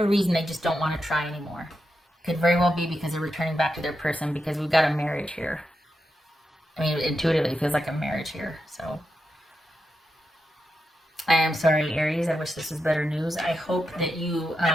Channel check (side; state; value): both; normal; correlation 0.87